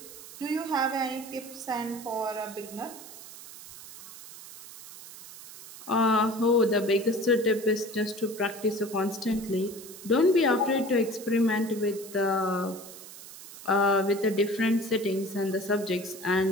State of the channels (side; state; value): right; noise; hiss, 16 dB below the sound